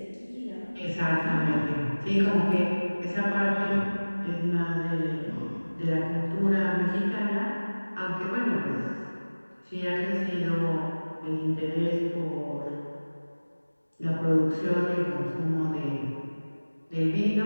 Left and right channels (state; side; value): inverted; both; correlation -1.00